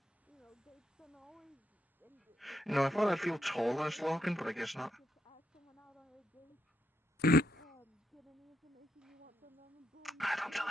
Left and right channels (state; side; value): normal; both; correlation 0.79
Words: You know, I thought I'd feel taller as Logan, but I guess not. Don't tell